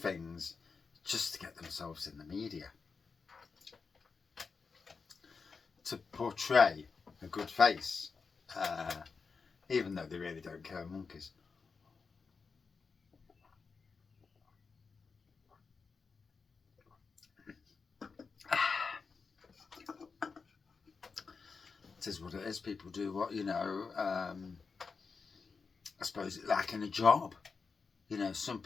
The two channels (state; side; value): quieter; right; 5.0 dB